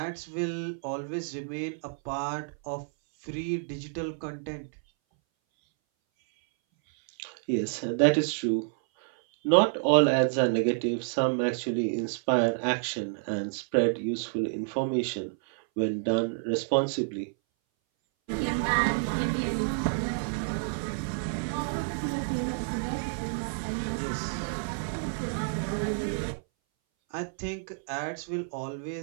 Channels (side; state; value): left; silent; 58 dB below the other